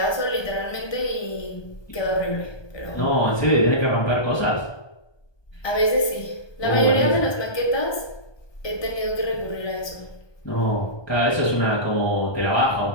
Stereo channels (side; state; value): right; late; 1.2 ms